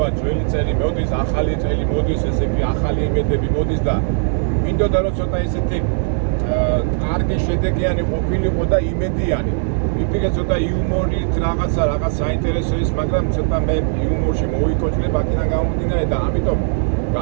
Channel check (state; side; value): silent; left; 66 dB below the other